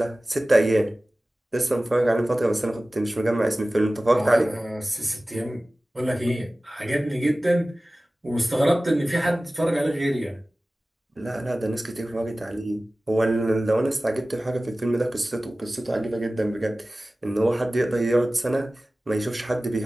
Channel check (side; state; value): both; normal; correlation 0.97